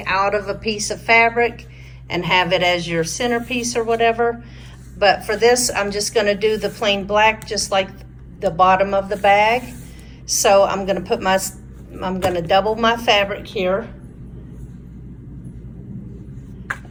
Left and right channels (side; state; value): both; identical; correlation 1.00